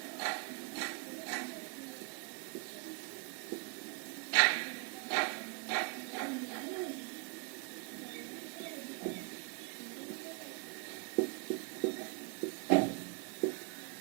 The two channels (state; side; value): quieter; left; 27.7 dB